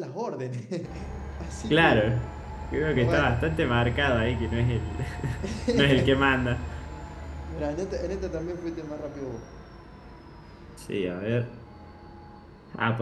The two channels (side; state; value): both; identical; correlation 1.00